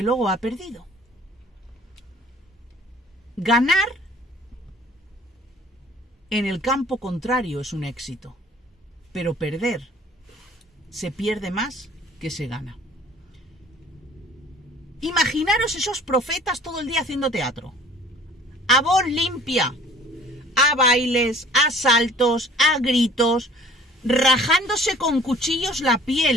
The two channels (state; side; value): normal; both; correlation 0.51